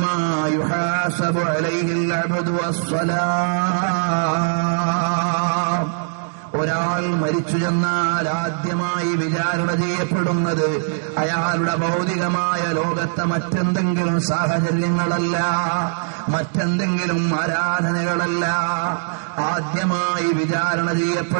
മാ യുഹാസബു അലൈഹിൽ അബ്ദു അസ്സലാം. ഒരാൾ മരിച്ചു ചെന്നാൽ ആദ്യമായി വിചാരണ ചെയ്യപ്പെടുന്നത് അയാളുടെ ഭൗതികമായ ലോകത്തെ മറ്റെന്തെങ്കിലും സാഹചര്യങ്ങളല്ല, മറ്റെന്തെങ്കിലും ആരാധനകളല്ല. ആദ്യമായി വിചാരണ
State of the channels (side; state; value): left; silent; 65 dB below the other